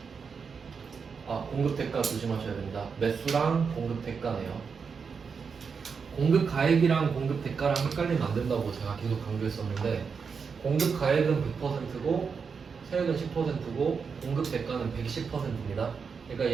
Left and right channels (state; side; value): quieter; left; 5.7 dB